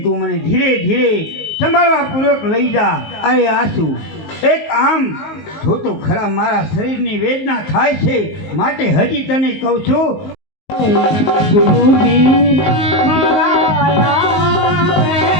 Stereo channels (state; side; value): late; right; 19 ms